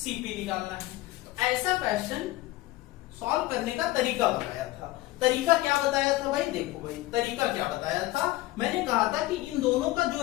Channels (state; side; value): quieter; right; 18.0 dB